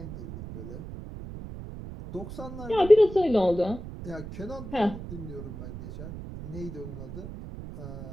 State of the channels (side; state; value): right; noise; rumble, 10 dB below the sound